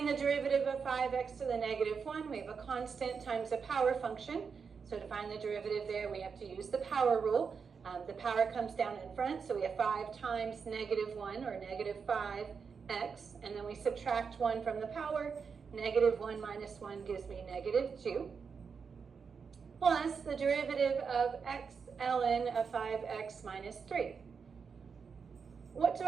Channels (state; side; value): quieter; left; 5.8 dB